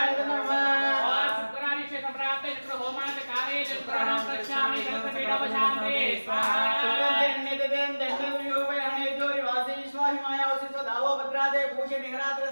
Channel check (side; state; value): both; inverted; correlation -1.00